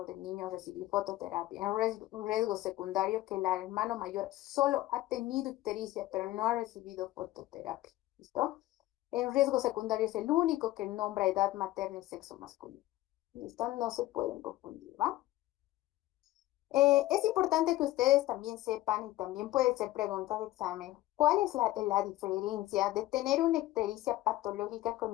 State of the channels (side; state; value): right; quieter; 16.5 dB